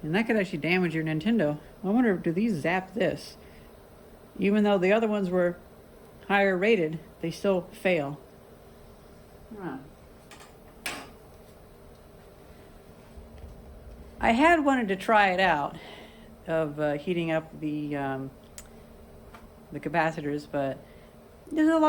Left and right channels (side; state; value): both; identical; correlation 1.00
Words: and that could actually damage your Nintendo. I wonder, do these zap this? Even though the other ones were higher rated, they still fail. Huh. I had wanted to try it out, of heating up the capacitors, but there's a